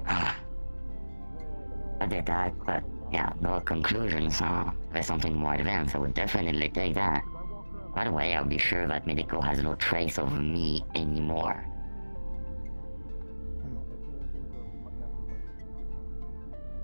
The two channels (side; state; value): both; inverted; correlation -1.00